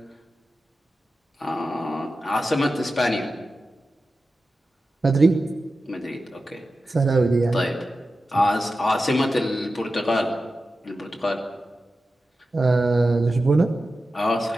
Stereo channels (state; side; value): normal; both; correlation 0.92